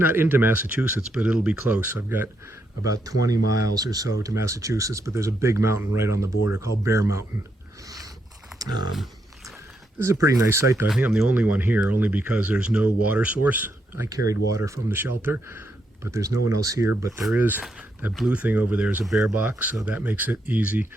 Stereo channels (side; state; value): both; normal; correlation 0.79